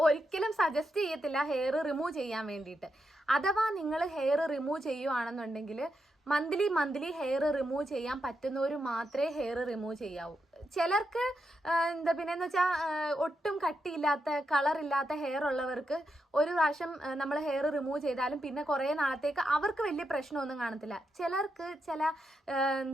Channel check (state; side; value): normal; both; correlation 0.84